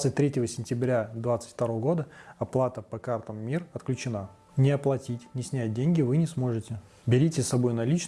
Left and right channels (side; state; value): both; identical; correlation 1.00